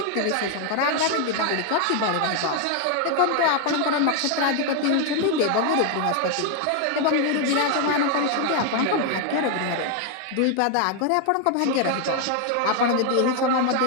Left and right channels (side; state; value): both; different; correlation 0.01